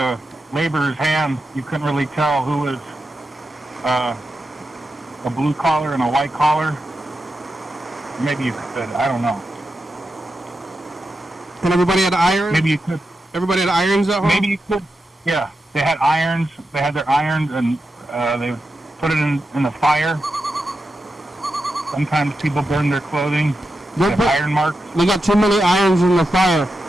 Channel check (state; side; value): normal; both; correlation 0.89